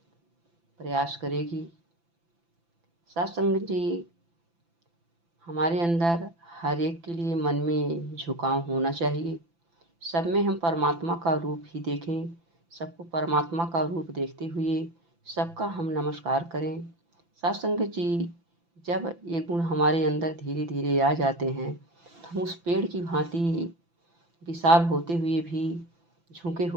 प्रयास करेगी। साथ संगत जी, हमारे अंदर हर एक के लिए मन में झुकाव होना चाहिए। सब में हम परमात्मा का रूप ही देखें, सबको परमात्मा का रूप देखते हुए सबका हम नमस्कार करें। साथ संगत जी, जब ये गुण हमारे अंदर धीरे धीरे आ जाते हैं तो हम उस पेड़ की भांति विशाल होते हुए भी झुके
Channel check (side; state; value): left; late; 5.9 ms